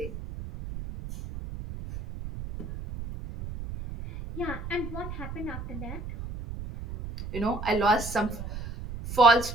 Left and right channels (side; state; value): right; noise; rumble, 9 dB below the sound